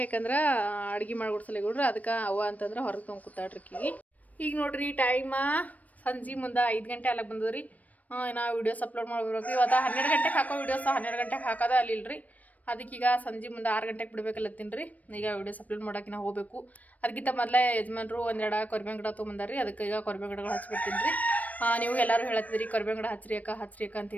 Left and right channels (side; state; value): right; late; 0.073 ms